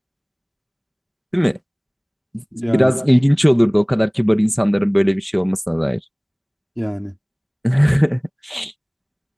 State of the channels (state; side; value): identical; both; correlation 1.00